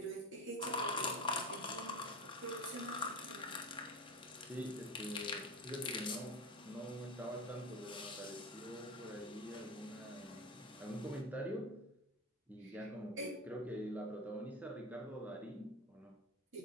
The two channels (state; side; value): normal; both; correlation 0.24